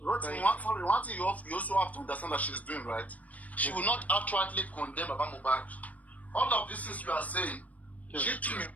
one thing you also have to understand that she's doing, right? She will not outrightly condemn Baba Mohbad. All of these things you are saying, she too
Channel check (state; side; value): late; right; 0.072 ms